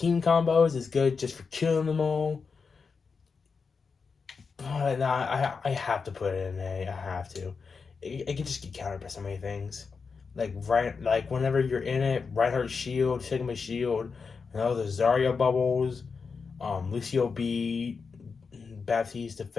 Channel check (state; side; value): quieter; right; 5.2 dB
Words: combos. It's good just for killing them all. But nah, I have to put it in A. I have to. It can just get countered by so many things. Like whenever you're in it, Reinhardt's shield, Sigma's shield, the Zarya bubbles, Lucio B, Baptiste